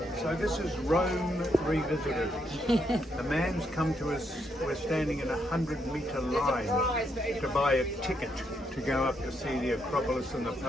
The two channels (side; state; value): both; normal; correlation 0.77